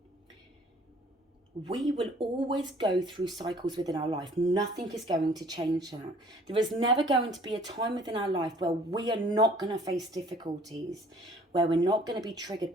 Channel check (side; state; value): both; normal; correlation 0.55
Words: we will always go through cycles within our life. Nothing is going to change that. There is never going to be a time within our life where we are not going to face difficulties, where we're not going to be triggered